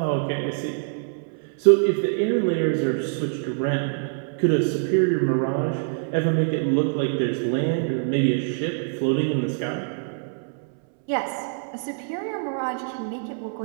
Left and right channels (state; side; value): silent; left; 62 dB below the other